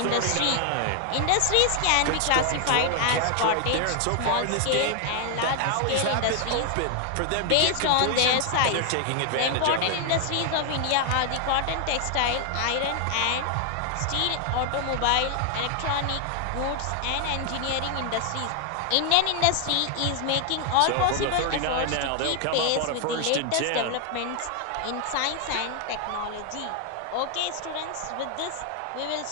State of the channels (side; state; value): both; different; correlation 0.00